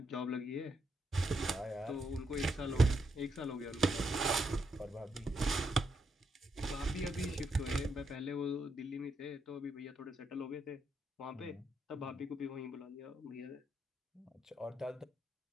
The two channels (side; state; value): both; normal; correlation 0.79